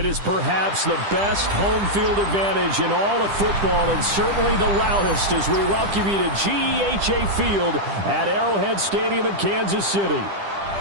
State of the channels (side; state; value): left; late; 10 ms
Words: is perhaps the best home field advantage in all of football, and certainly the loudest, as we welcome you to GEHA Field at Arrowhead Stadium in Kansas City.